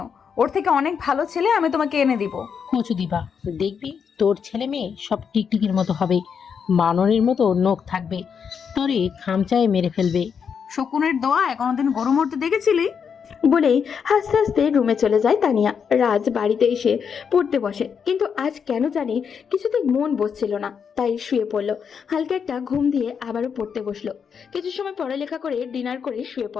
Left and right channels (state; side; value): quieter; right; 6.8 dB